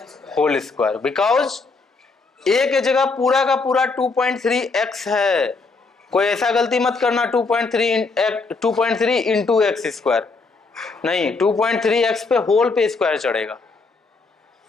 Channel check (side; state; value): right; quieter; 4.0 dB